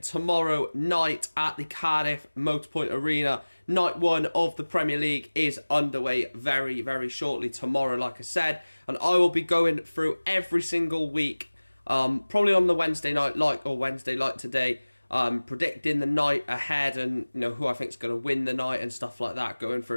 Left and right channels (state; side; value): inverted; both; correlation -1.00